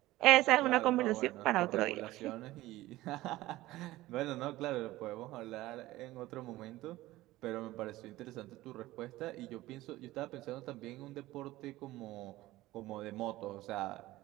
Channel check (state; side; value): quieter; left; 17.3 dB